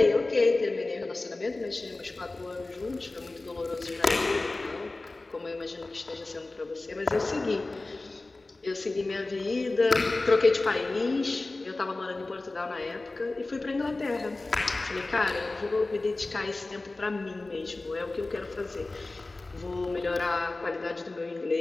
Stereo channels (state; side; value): quieter; right; 3.2 dB